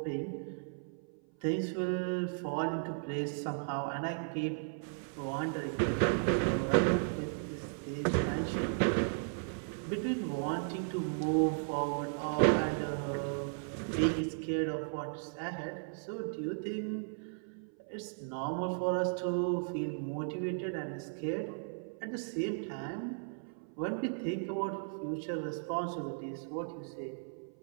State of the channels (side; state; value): left; silent; 54 dB below the other